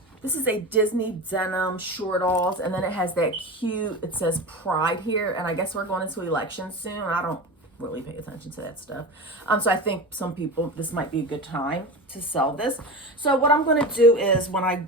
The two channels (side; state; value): both; normal; correlation 0.27